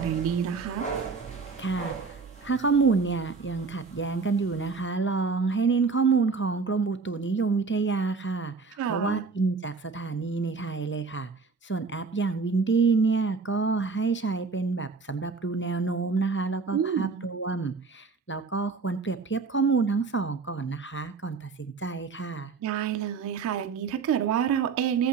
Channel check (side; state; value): left; quieter; 4.8 dB